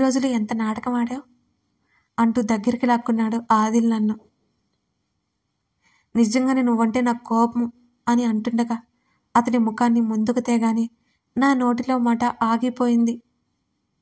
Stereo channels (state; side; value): identical; both; correlation 1.00